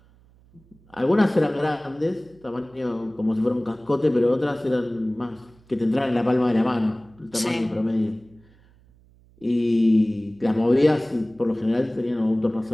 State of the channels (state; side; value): noise; right; hum, 29 dB below the sound